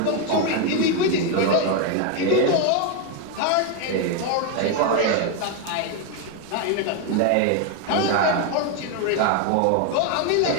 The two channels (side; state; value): both; different; correlation 0.01